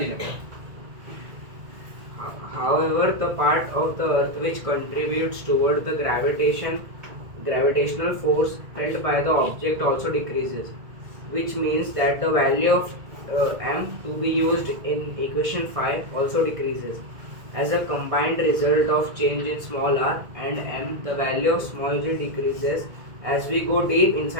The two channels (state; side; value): late; left; 2.0 ms